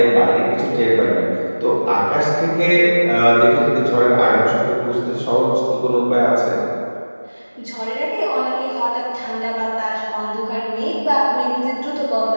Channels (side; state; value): both; inverted; correlation -1.00